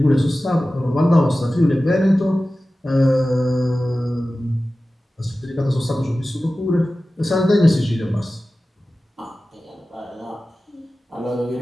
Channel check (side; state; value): both; normal; correlation 0.96